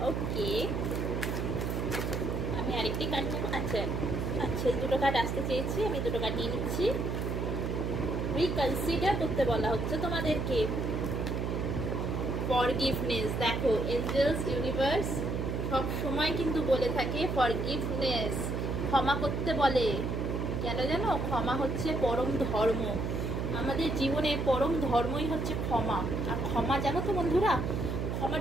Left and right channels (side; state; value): right; noise; hum, 1 dB below the sound